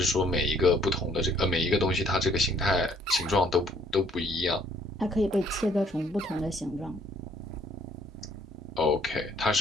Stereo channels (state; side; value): normal; both; correlation 0.63